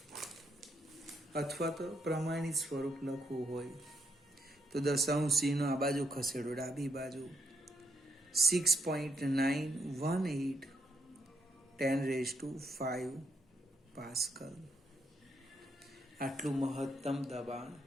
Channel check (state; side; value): normal; both; correlation 0.76